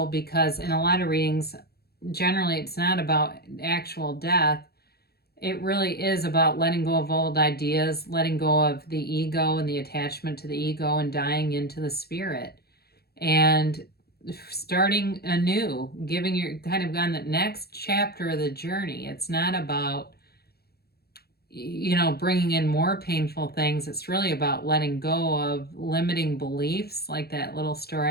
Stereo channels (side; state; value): right; late; 0.46 ms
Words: because in a lot of readings, generally it's not about actual death. It really is about letting go of old ideas, letting go of the ego and the attachment to the ego and dying into the spirit and starting anew, giving your kind of on the next chapter of the journey. It's not about, you know, bringing in more painful things. It's really about letting go of limiting beliefs, like that little